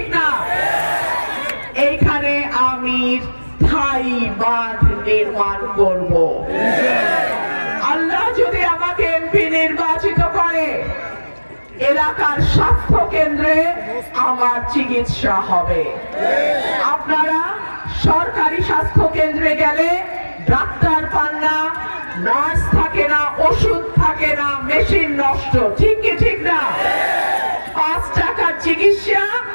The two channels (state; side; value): inverted; both; correlation -1.00